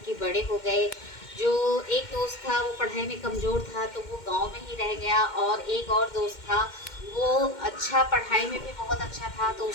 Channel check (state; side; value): late; right; 2.1 ms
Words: के बड़े हो गए। जो एक दोस्त था वो पढ़ाई में कमज़ोर था, तो वो गांव में ही रह गया। और एक और दोस्त था, वो अच्छा पढ़ाई में भी बहुत अच्छा था, तो